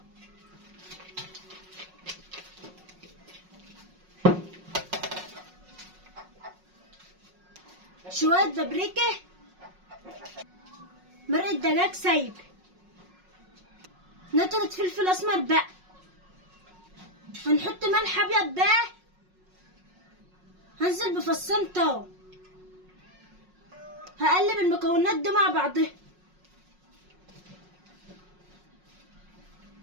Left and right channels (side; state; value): left; late; 5.5 ms